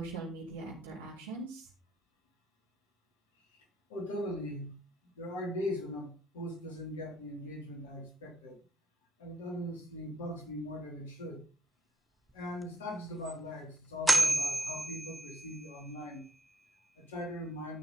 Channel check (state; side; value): normal; both; correlation 0.74